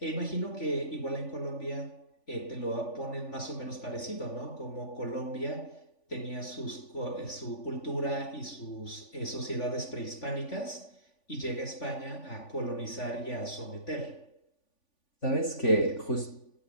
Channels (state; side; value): late; right; 3.5 ms